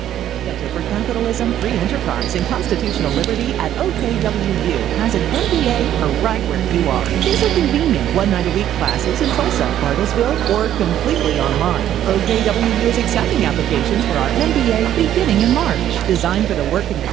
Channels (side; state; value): left; quieter; 11.3 dB